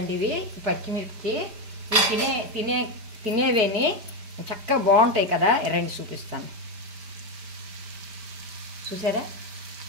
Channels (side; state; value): left; late; 5.0 ms